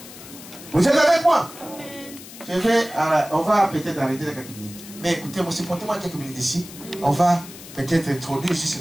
Vous êtes avec moi? On va peut-être arrêter dans quelques minutes. Mais écoutez-moi, supportez-moi quelques minutes ici. On va peut-être introduire juste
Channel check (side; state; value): left; noise; hiss, 16 dB below the sound